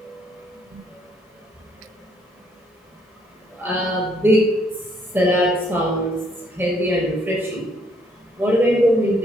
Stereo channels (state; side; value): normal; both; correlation 0.68